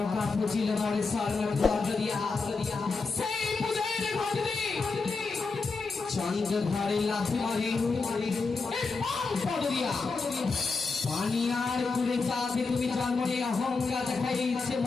পুজিল মরে চন্দ্র ধরে লাথি মারে পানি আর কুলে চাঁদে তুমি জন্ম নিয়ে অহংকার দেখাইছে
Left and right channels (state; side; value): quieter; right; 4.2 dB